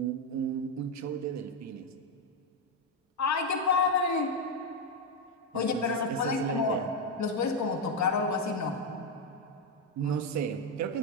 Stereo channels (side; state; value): both; normal; correlation 0.05